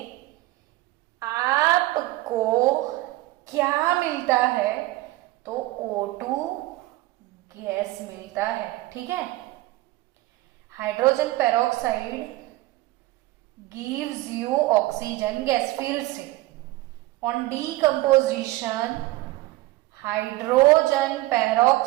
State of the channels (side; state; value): left; quieter; 19.0 dB